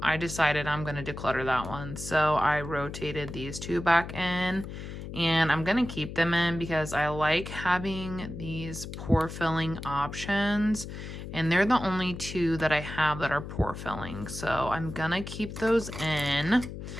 decided I'm going to declutter that one. So I rotated these 2 back in, and I'm going to keep them in because I like having these pore filling options, and they're the only 2 that I have that are pore filling. So I'm going to keep those in.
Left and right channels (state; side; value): noise; left; hum, 9 dB below the sound